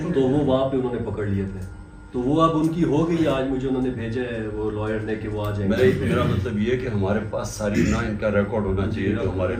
تو وہ وہاں پہ انہوں نے پکڑ لیے تھے. تو وہ اب ان کی ہو گئی. آج مجھے انہوں نے بھیجا ہے وہ لائر نے کہ وہ آ جائیں گے. میرا مطلب یہ ہے کہ ہمارے پاس ساری نا ان کا ریکارڈ ہونا چاہیے جو ہمارے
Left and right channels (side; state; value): both; identical; correlation 1.00